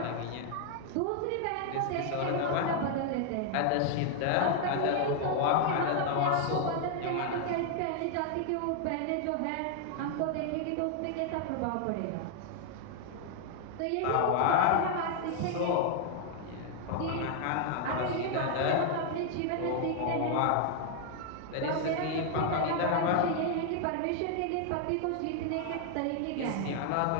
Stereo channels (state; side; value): different; both; correlation 0.00